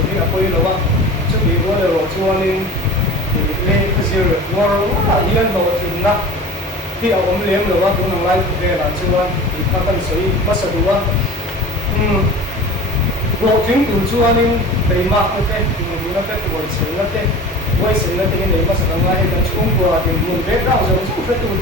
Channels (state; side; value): normal; both; correlation 0.37